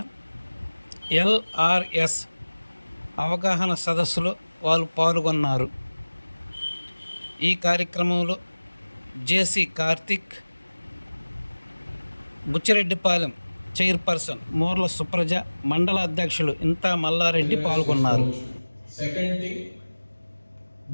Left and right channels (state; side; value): inverted; both; correlation -1.00